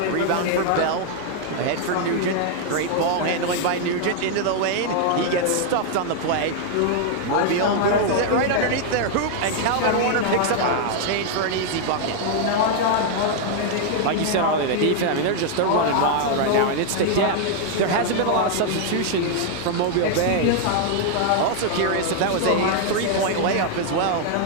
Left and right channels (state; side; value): different; both; correlation 0.00